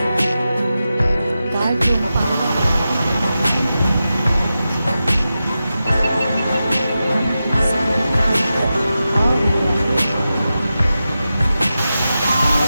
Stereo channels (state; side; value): inverted; both; correlation -0.92